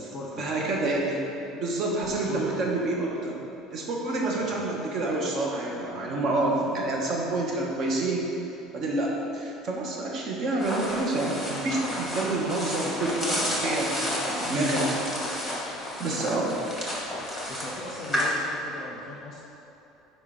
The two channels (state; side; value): normal; both; correlation 0.47